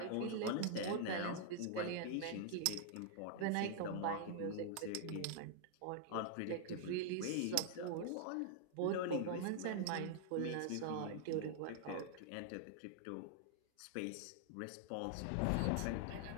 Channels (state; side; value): different; both; correlation 0.00